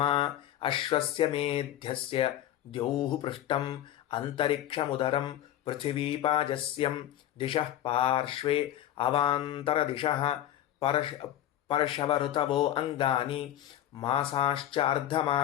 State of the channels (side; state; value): right; quieter; 12.2 dB